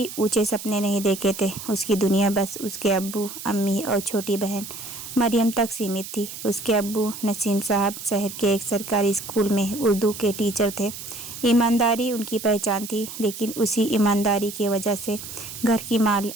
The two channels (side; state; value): right; noise; hiss, 11 dB below the sound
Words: ऊंचे सपने नहीं देखे थे। उसकी दुनिया बस उसके अब्बू, अम्मी और छोटी बहन मरियम तक सीमित थी। उसके अब्बू नसीम साहब शहर के एक सरकारी स्कूल में उर्दू के टीचर थे। ईमानदारी उनकी पहचान थी, लेकिन उसी ईमानदारी की वजह से घर की